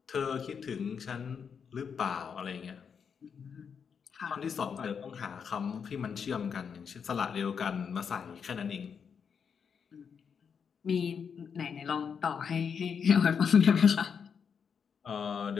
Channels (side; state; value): right; quieter; 6.7 dB